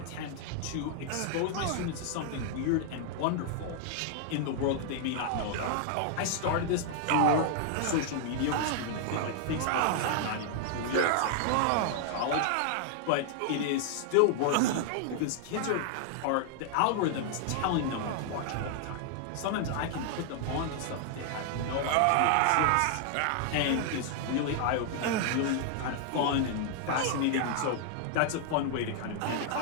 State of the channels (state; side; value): different; both; correlation 0.00